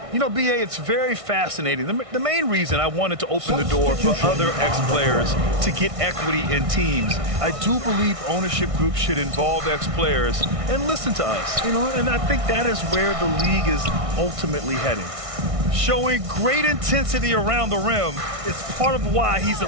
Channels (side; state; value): left; late; 1.6 ms